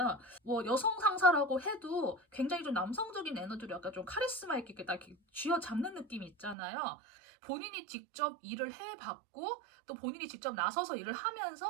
뭐 여성 상사라고 해도 굉장히 좀 남성적인 에너지로 약간 좀 카리스마 있게 딱 이렇게 쥐어잡는 느낌이 있잖아요. 본인이 직접 일을 해봤고 또 본인이 직접 나서서 일을 하면서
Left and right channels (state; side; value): drops out; left; at 6.6 s